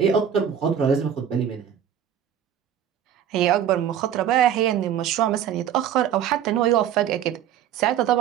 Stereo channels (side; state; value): left; quieter; 9.5 dB